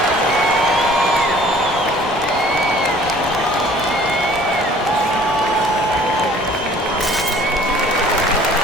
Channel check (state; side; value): normal; both; correlation 0.52